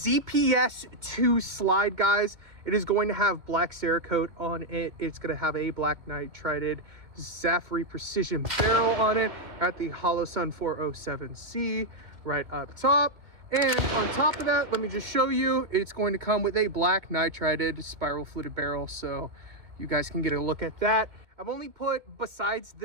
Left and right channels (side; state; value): left; late; 2.2 ms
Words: slide, guys. It is going to have black Cerakote on it. It's going to have a black nitrided Zaffiri Precision barrel on it at the Holosun 407C right up top. And on top of that, let me just show you, it's going to come with a black nitrided spiral fluted barrel. So you guys can get a look at that. I've only put, besides